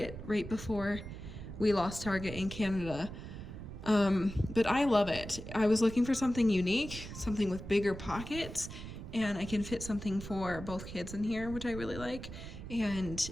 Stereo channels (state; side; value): noise; right; rumble, 10 dB below the sound